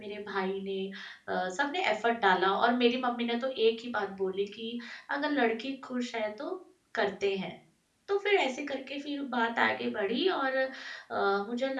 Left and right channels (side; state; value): both; identical; correlation 1.00